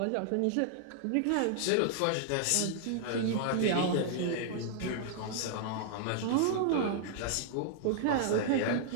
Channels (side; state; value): both; different; correlation -0.01